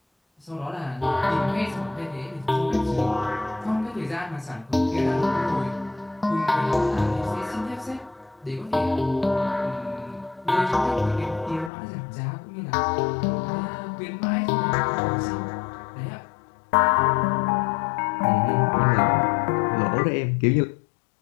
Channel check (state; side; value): drops out; right; at 11.7 s